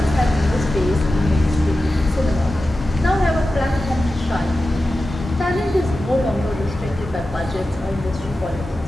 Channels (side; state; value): both; normal; correlation 0.93